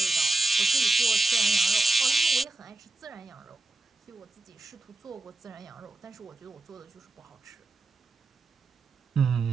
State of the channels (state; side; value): quieter; left; 3.1 dB